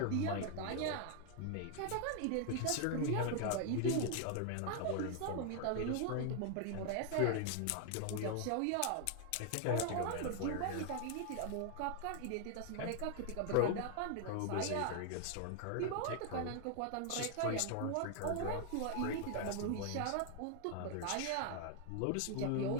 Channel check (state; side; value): different; both; correlation 0.00